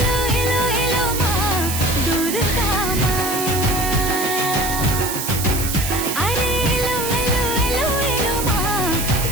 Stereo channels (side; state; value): right; noise; hiss, 4 dB below the sound